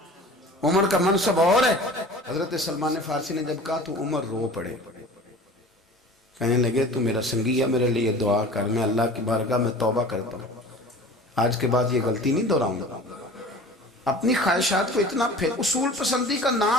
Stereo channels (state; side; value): normal; both; correlation 0.41